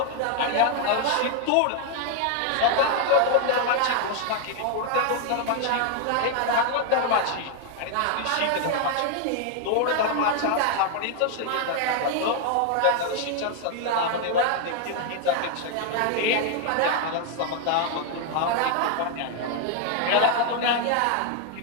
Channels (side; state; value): both; different; correlation 0.00